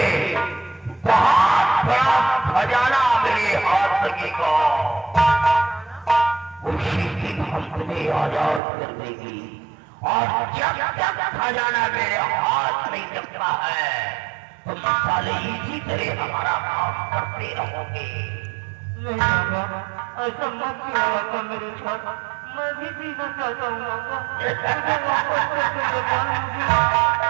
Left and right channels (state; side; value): drops out; left; at 8.6 s